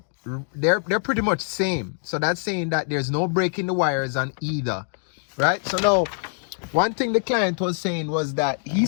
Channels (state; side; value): silent; right; digital silence